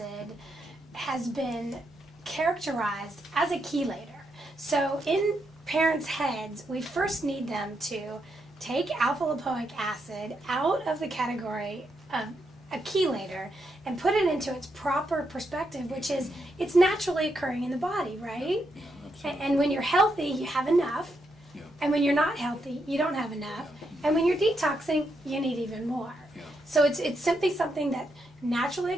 has been characterized as a chelator. So in parents' heads, we first need them to take alpha lipoic acid out of the category of a chelator and put it into its proper perspective, which is it's naturally occurring in the body, right? And when you're healthy, you have enough. Yeah. And when you're not healthy, you don't have enough. And when you're detoxing, you need even more. Yeah. So it's simply something that naturally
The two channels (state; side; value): normal; both; correlation 0.81